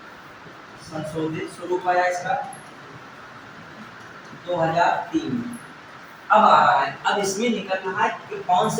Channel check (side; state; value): both; identical; correlation 1.00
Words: संशोधित स्वरूप आया इसका 2003 में। अब आ रहा है, अब इसमें निकल रहा है कि कौन